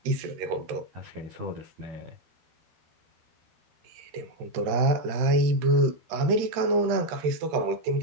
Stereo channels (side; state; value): left; late; 13 ms